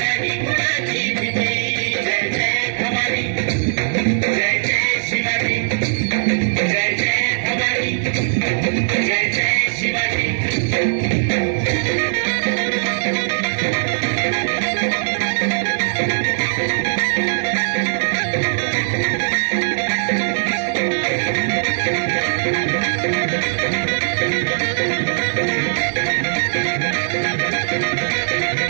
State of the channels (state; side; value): silent; left; 66 dB below the other